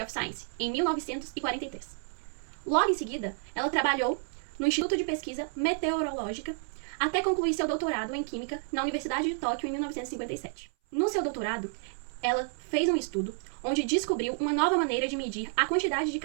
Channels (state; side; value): silent; left; 58 dB below the other